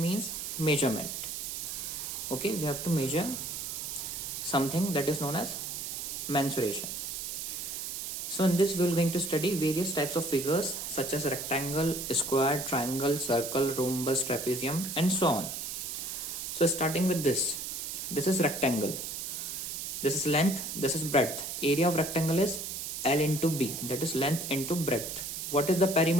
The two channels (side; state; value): right; noise; hiss, 5 dB below the sound